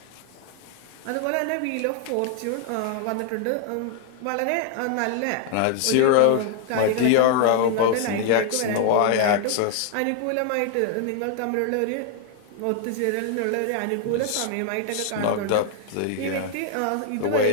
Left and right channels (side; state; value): both; different; correlation 0.00